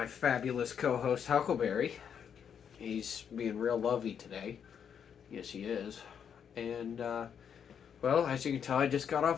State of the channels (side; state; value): right; quieter; 7.8 dB